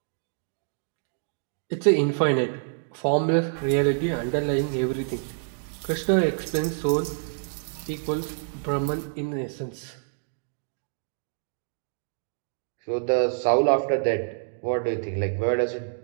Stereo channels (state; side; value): silent; left; digital silence